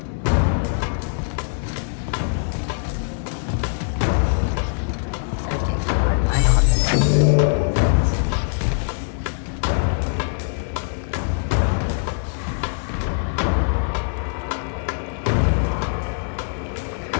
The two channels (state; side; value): silent; right; digital silence